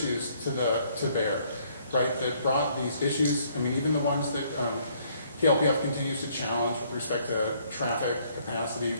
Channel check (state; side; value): inverted; both; correlation -0.65